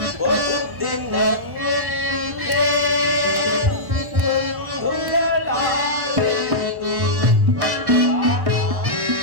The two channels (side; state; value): left; late; 1.1 ms